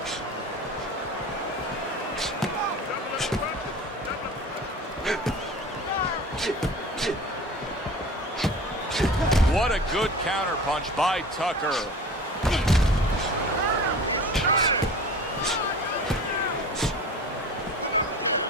What a good counter punch by Tucker.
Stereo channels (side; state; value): both; normal; correlation 0.38